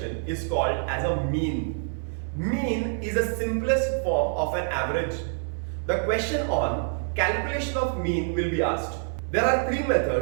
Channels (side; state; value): left; silent; 56 dB below the other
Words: is called as a mean. Mean is the simplest form of an average. The question on calculation of mean will be asked. There are three